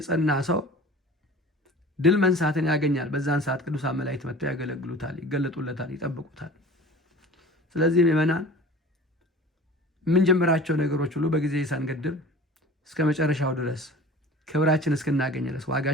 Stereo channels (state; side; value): normal; both; correlation 0.41